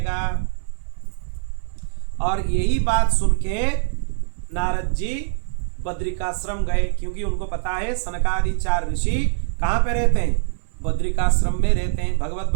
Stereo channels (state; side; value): silent; left; digital silence